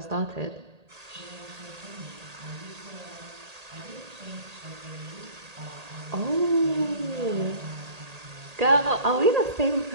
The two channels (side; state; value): left; late; 1.8 ms